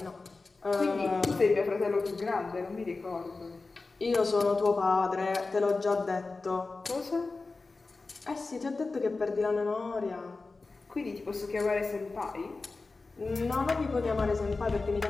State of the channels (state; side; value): quieter; right; 3.8 dB